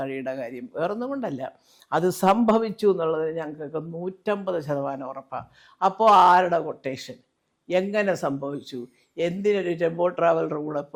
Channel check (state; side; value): identical; both; correlation 1.00